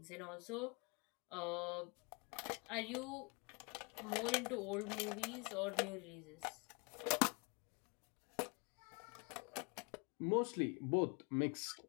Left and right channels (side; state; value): right; quieter; 31.7 dB